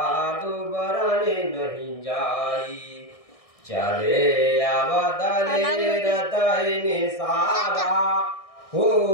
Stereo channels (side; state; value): right; late; 1.6 ms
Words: बरने नहीं जाई चले आवदले रतई निसादा